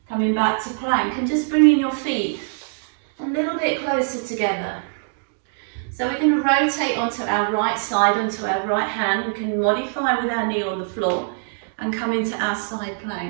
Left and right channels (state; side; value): silent; left; digital silence